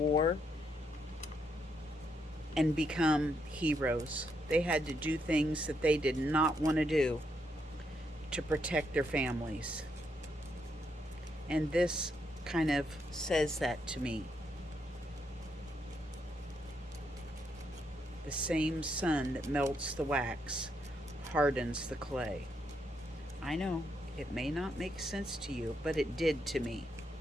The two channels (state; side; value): normal; both; correlation 0.78